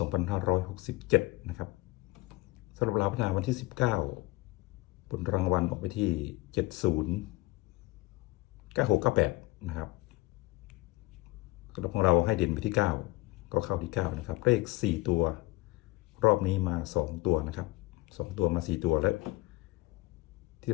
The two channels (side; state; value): right; quieter; 21.6 dB